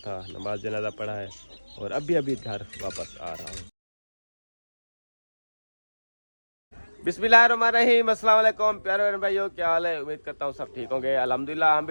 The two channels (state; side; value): inverted; both; correlation -1.00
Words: नमाज जनाजा पढ़ा है और अभी अभी घर वापस आ रहा हूँ। बिस्मिल्लाहिर्रहमानिर्रहीम, अस्सलाम वालेकुम प्यारे भाइयों, क्या हाल है। उम्मीद करता हूँ सब ठीक होंगे। अल्हम्दुलिल्लाह हम